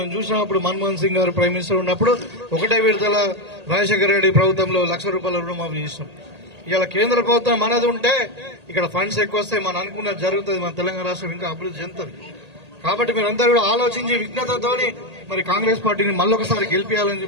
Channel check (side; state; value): left; late; 1.8 ms